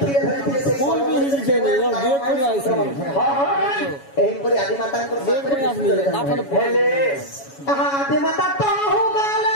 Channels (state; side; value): late; right; 7.2 ms